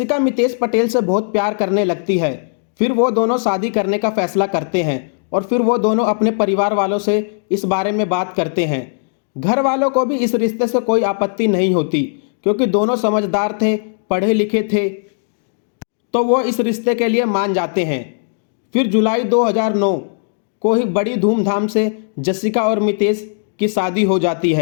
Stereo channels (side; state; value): right; silent; digital silence